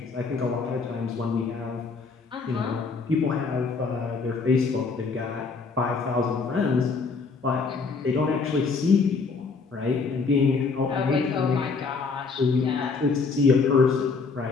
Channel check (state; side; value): quieter; right; 4.6 dB